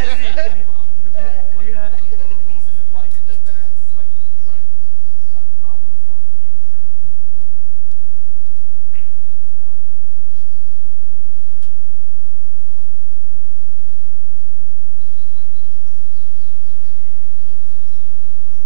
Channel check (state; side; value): different; both; correlation 0.00